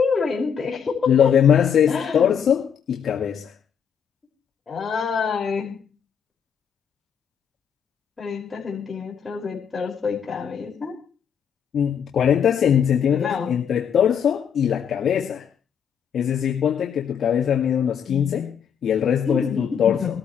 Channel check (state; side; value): quieter; right; 7.8 dB